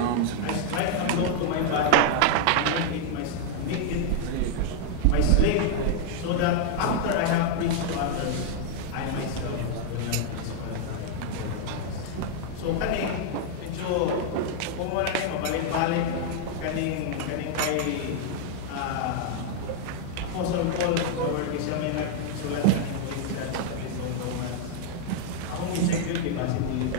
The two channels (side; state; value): both; different; correlation 0.00